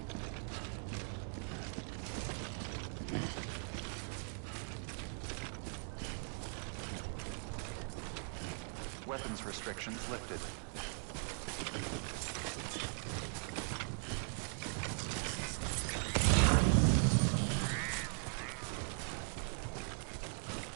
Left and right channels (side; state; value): left; silent; 51 dB below the other